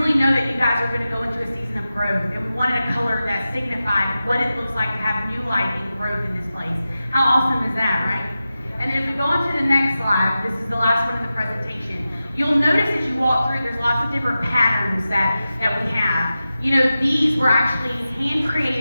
know that you guys are going to go into a season of growth, and we wanted a color that signified what it looks like to have new life and growth in this place. How awesome is that, right? And then if we go on to the next slide, this is the last one of the presentation. You'll notice as you walk through, there's lots of different patterns that we have. You know, these were actually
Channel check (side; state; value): both; inverted; correlation -0.93